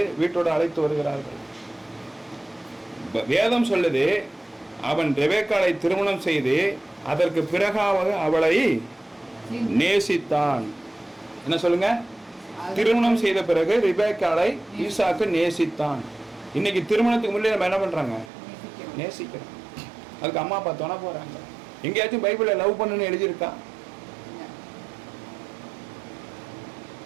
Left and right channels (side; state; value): left; drops out; at 18.3 s